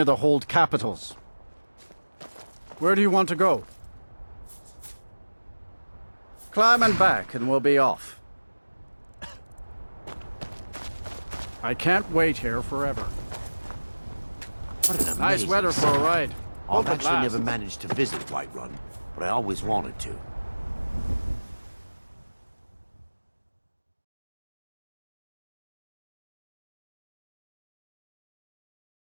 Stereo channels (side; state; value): both; inverted; correlation -1.00